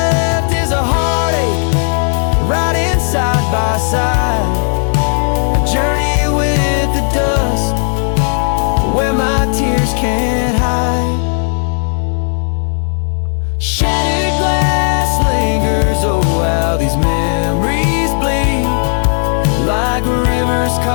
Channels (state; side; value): silent; right; 62 dB below the other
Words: is a heartache, riding side by side, a journey with the dust where my tears can't hide. Shattered glass lingers, oh how these memories bleed, like rivers